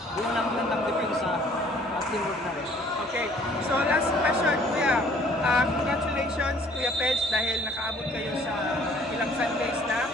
yun lang ng depensa at teamwork na rin. Okay, so last question kuya. Congratulations Kuya Peds dahil nakaabot kayo sa ilang Sundays na.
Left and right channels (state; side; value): normal; both; correlation 0.57